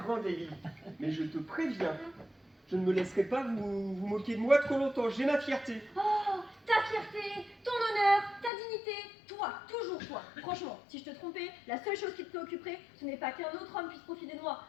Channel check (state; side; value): drops out; right; at 8.5 s